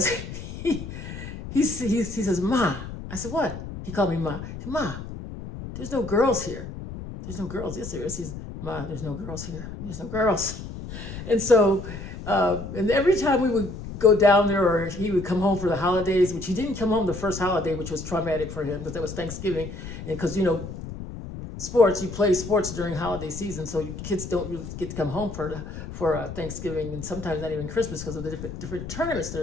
he says, Ma. I said, what? He called me Ma. Said, Ma, there's no girls here. There's no girls. Yes, there is. He says, Ma, there's no girls here. There's no girls. And so, and every time we would go down there, or he would come home for the holidays, which he didn't come home the first holiday, which was traumatic for him because that was Thanksgiving. And because, sports, you play sports during holiday season, so kids don't really get to come home for Thanksgiving, and sometimes not even Christmas because of the different tournaments that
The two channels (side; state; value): left; noise; rumble, 10 dB below the sound